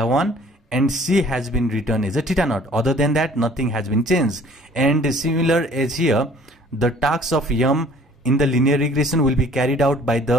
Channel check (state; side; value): normal; both; correlation 0.53